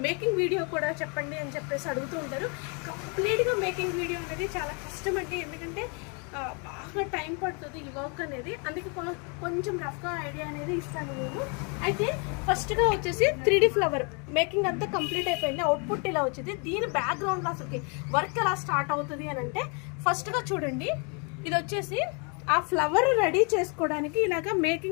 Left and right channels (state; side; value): quieter; right; 35.4 dB